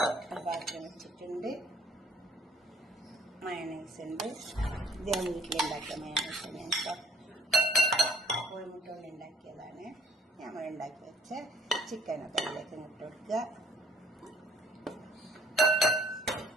പാത്രം വെച്ചിട്ടുണ്ട്. മയണൈസ് ഉണ്ട്. ഇത് ഞാൻ വീട്ടിലുണ്ടാക്കിയ മയണൈസ് ഞാൻ കോഴിമുട്ട കൊണ്ട് ഉണ്ടാക്കിയതാണ്. നമ്മൾ ഉണ്ടാക്കി വെച്ച ചിക്കനൊക്കെ അതിലേക്ക് ഇട്ട് കൊടുക്കുക.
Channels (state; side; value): normal; both; correlation 0.59